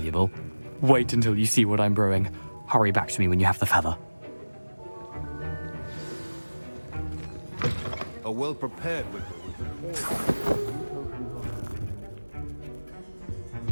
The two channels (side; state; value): both; inverted; correlation -1.00